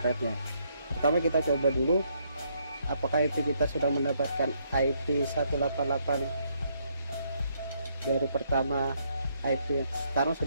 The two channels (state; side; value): inverted; both; correlation -0.72